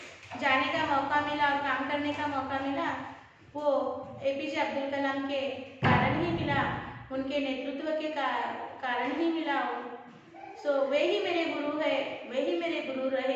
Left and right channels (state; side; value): identical; both; correlation 1.00